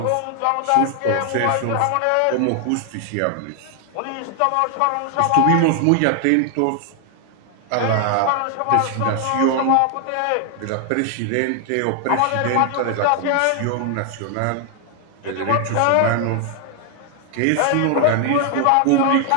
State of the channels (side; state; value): both; different; correlation 0.00